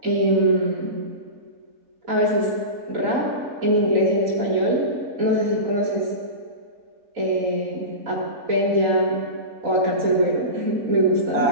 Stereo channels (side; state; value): left; late; 3.9 ms